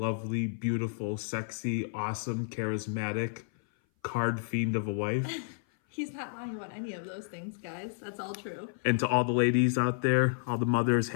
beautiful, sexy, awesome, charismatic, card fiend of a wife. He's not lying about any of those things, guys. That's all true. And to all the ladies out there, all the mothers,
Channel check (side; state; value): right; silent; 56 dB below the other